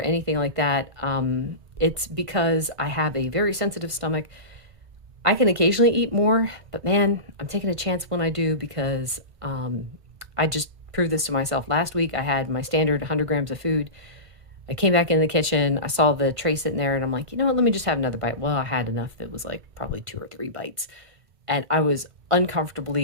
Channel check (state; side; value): late; left; 1.5 ms